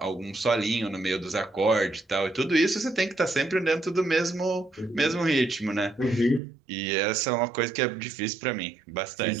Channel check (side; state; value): left; drops out; at 6.4 s